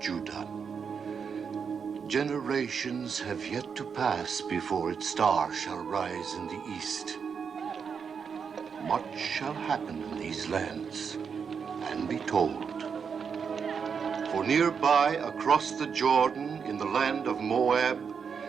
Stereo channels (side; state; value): left; quieter; 6.4 dB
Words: Judah. Generations have yet to pass before its star shall rise in the east. Much shall happen in these lands and be told. For nearby, across the Jordan, in the land of Moab,